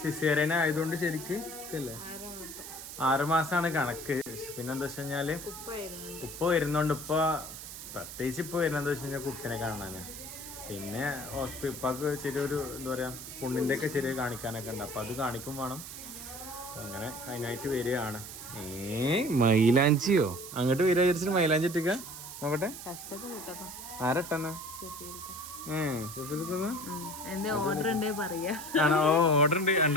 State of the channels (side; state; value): right; noise; hiss, 11 dB below the sound